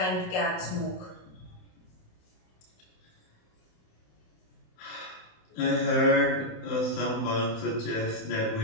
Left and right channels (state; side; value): late; right; 27 ms